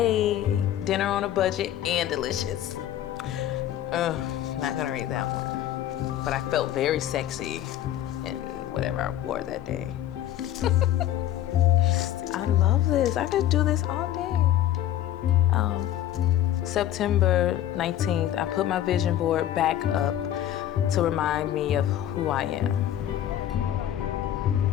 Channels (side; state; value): right; quieter; 12.0 dB